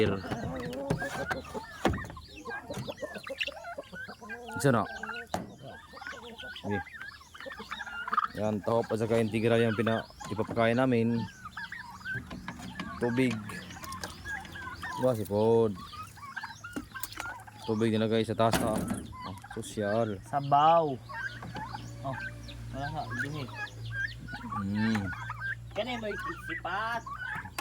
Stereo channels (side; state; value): both; identical; correlation 1.00